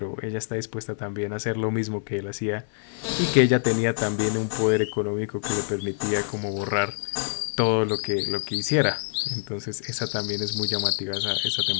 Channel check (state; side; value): silent; right; digital silence